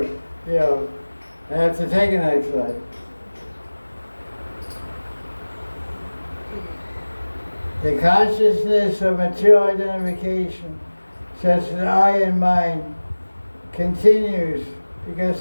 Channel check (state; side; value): inverted; both; correlation -1.00